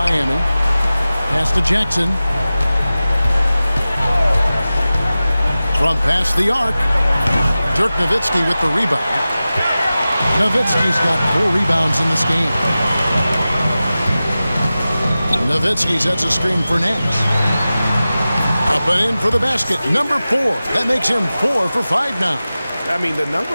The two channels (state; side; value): inverted; both; correlation -0.95